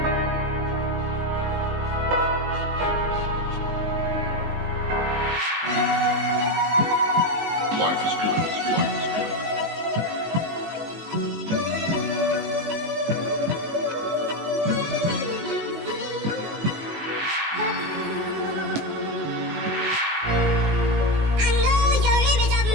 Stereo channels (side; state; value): left; late; 19 ms